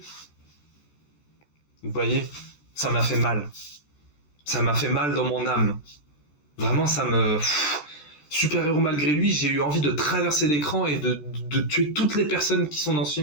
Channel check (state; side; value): late; right; 13 ms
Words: Vous voyez, ça m'a fait mal. Ça m'a fait mal dans mon âme. Vraiment, ça me... Super-héros malgré lui, j'ai eu envie de traverser l'écran et de tuer toutes les personnes qui sont dans ce